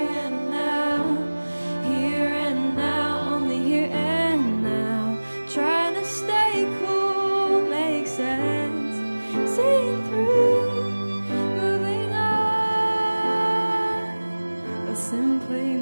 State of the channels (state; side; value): inverted; both; correlation -1.00